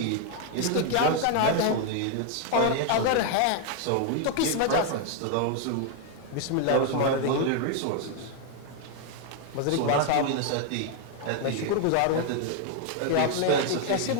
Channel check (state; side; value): different; both; correlation 0.00